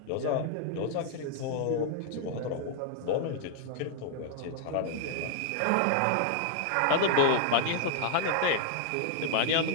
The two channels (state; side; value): different; both; correlation 0.00